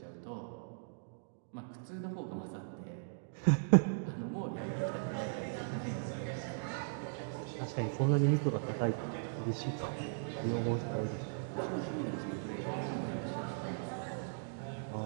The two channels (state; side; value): silent; left; digital silence